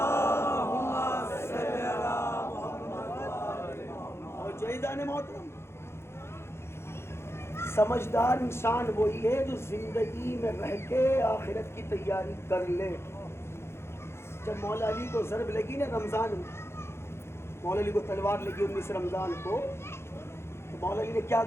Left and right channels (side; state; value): right; late; 0.12 ms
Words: اور جائزان محترم, سمجھدار انسان وہی ہے جو زندگی میں رہ کے آخرت کی تیاری کر لے. جب مولا علی کو ضرب لگی نا رمضان میں, مولا علی کو تلوار لگی 19 رمضان کو, تو مولا علی نے کیا